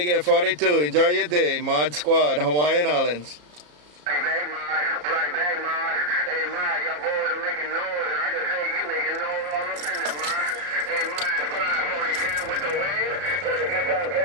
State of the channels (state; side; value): late; left; 34 ms